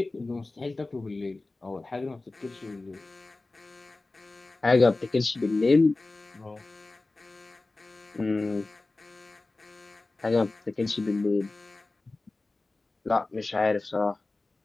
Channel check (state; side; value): quieter; right; 3.2 dB